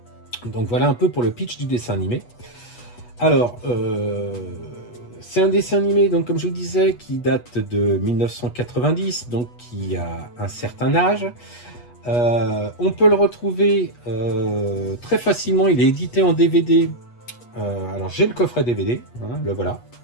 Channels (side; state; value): right; late; 8.3 ms